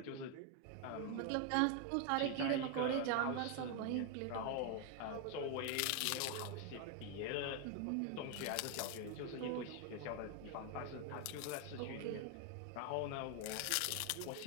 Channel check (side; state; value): both; different; correlation 0.01